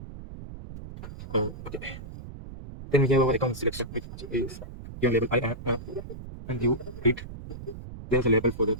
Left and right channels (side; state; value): right; noise; rumble, 12 dB below the sound